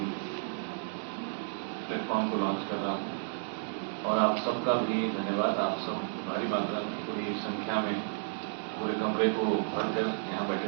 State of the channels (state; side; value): silent; left; digital silence